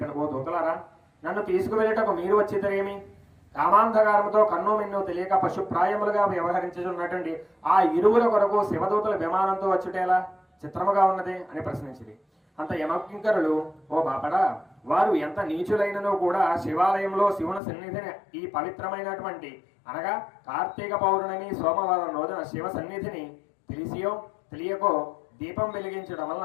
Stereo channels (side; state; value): right; drops out; at 17.6 s